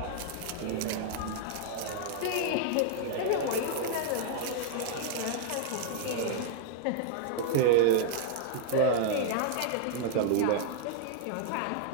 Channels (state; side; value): different; both; correlation -0.01